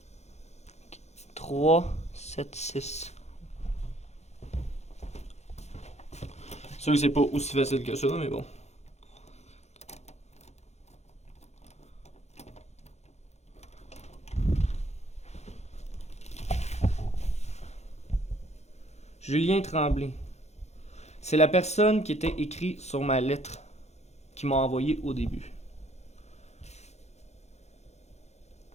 3, 7, 6. C'est sûr que c'est pas aussi facile que ça, mais bon. Julien Tremblay. C'est la personne qui était écrite sur ma lettre qui m'a envoyé au début.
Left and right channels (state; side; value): late; right; 0.32 ms